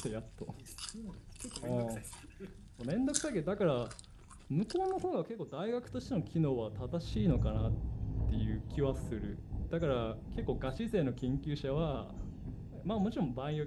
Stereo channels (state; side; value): identical; both; correlation 1.00